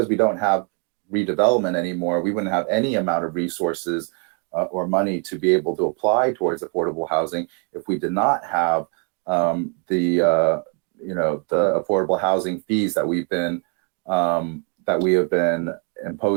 we don't have redevelopment anymore, we wouldn't have any amount of resources or money to be able to apply towards affordable housing if we did not have the affordable housing fees that we have been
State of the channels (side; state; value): left; quieter; 39.2 dB